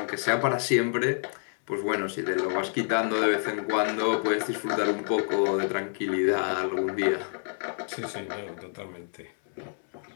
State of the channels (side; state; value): right; silent; 59 dB below the other